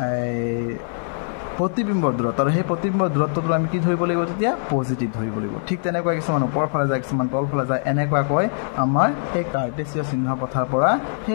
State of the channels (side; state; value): right; silent; 64 dB below the other